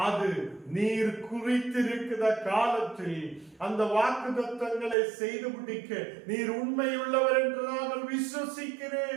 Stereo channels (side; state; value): left; drops out; at 5.0 s